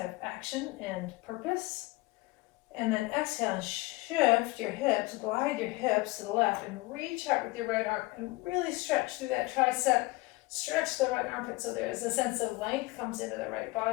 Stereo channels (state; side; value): quieter; right; 21.5 dB